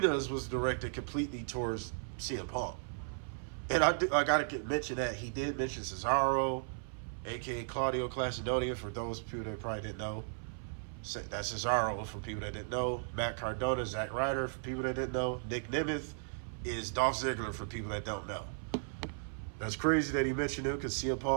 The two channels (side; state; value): left; silent; 54 dB below the other